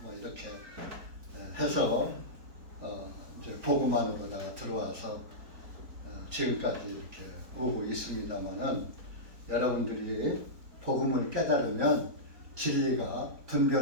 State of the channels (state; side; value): late; left; 4.3 ms